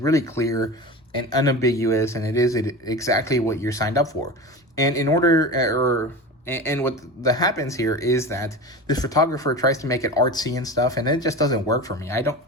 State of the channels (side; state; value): both; normal; correlation 0.29